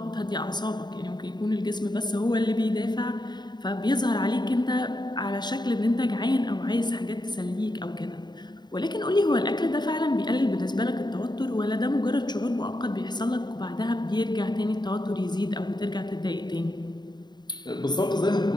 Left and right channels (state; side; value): late; right; 0.21 ms